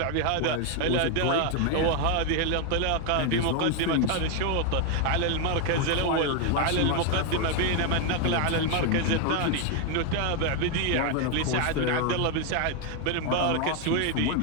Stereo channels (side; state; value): both; different; correlation 0.01